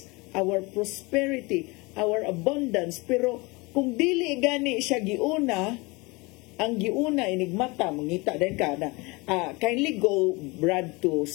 our prosperity, our abundance. Pero kung dili gani siya giuna, ang giuna enigmata mangita din ka na kindly go Brad to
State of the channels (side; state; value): right; quieter; 25.6 dB